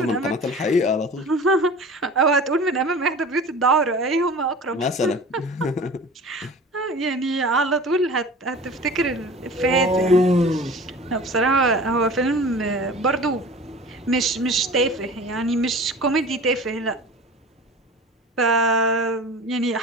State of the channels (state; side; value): normal; both; correlation 0.39